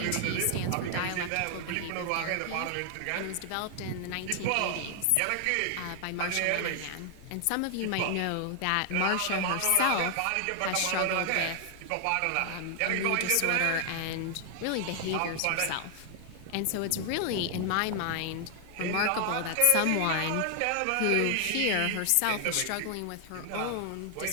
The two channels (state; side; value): different; both; correlation 0.00